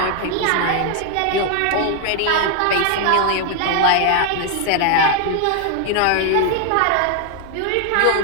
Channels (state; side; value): different; both; correlation 0.00